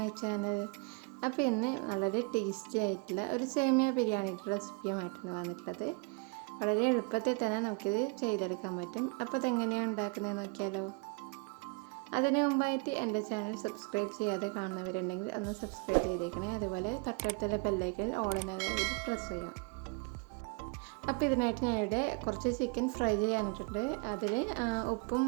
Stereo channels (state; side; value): quieter; left; 31.6 dB